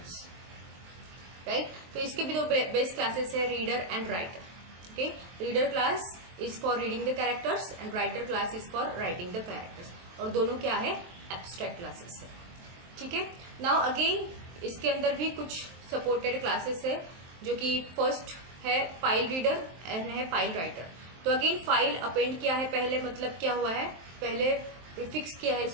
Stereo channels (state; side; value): late; left; 23 ms